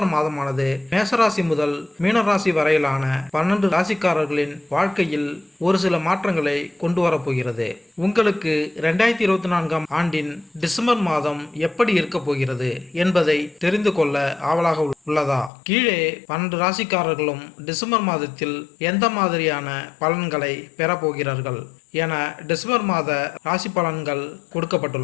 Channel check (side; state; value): right; drops out; at 15.5 s